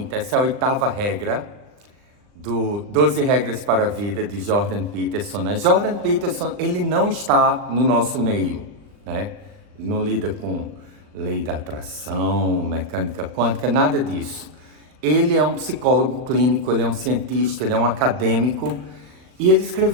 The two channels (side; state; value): left; late; 39 ms